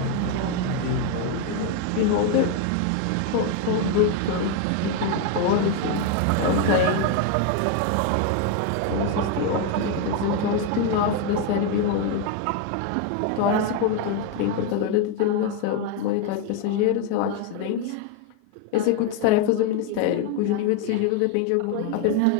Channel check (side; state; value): both; different; correlation 0.01